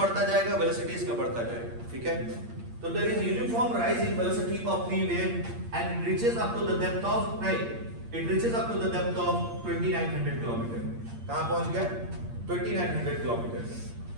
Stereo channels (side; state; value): left; late; 8.6 ms